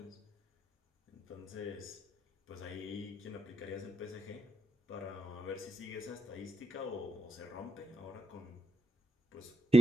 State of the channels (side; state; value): both; normal; correlation 0.81